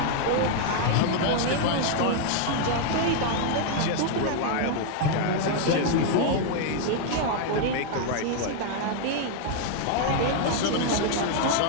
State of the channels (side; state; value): both; different; correlation 0.00